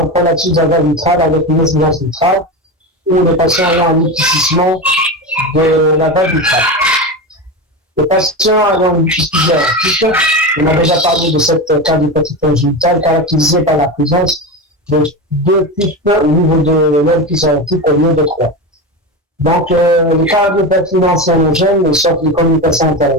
prolapsus de la valve vitrale avec une incidence vitrale, ou les patients ayant un épaississement de la valve vitrale. Les patients ayant une suspicion aortique, on a déjà parlé de cette cardiopathie congénitale caractérisée par la présence de 2 pics au niveau de l'orifice aortique au lieu de 3. Donc, les cardiopathies non cyanogènes sortent des communications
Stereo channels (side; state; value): both; normal; correlation 0.21